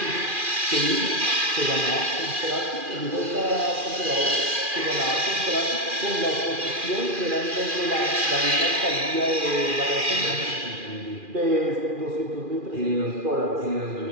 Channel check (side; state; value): left; late; 2.4 ms